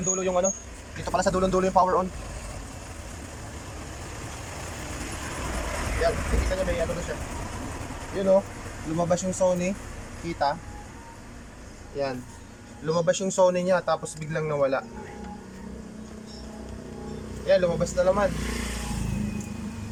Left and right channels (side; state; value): both; identical; correlation 1.00